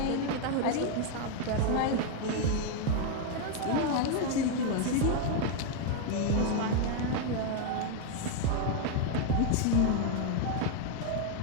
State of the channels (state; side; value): different; both; correlation 0.00